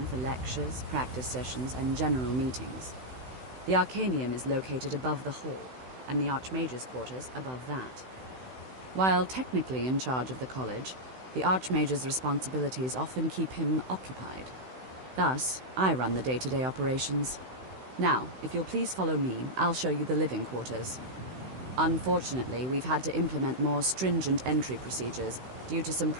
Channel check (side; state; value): left; late; 16 ms